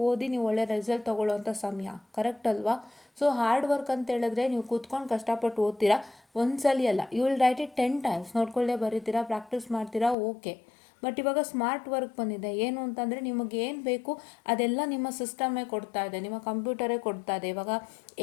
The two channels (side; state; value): right; drops out; at 10.2 s